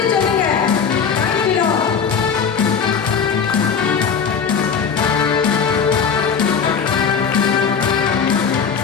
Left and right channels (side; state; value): right; quieter; 6.5 dB